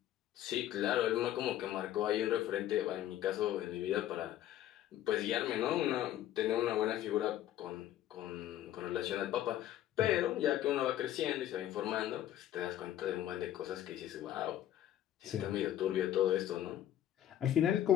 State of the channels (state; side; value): quieter; right; 12.2 dB